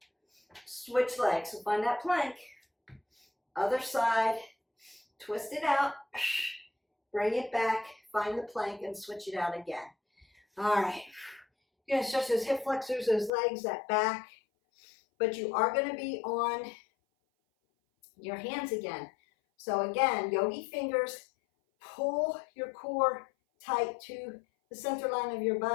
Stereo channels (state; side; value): drops out; right; at 13.3 s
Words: Switch legs. So find that plank. Other side. twist it out, bring it back, find the plank, and switch it out again. All right. You're going to stretch those hip flexors, those legs, that back, but you are going to be on your hands again. So again, yogi fingers, pull your core tight to the center line of your